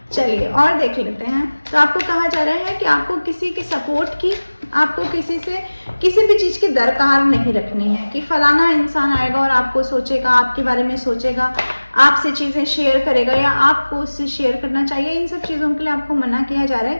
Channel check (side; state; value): both; inverted; correlation -1.00